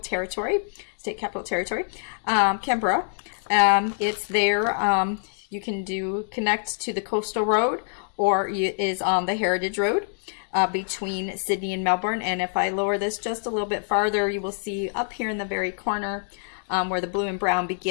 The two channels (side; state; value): right; silent; digital silence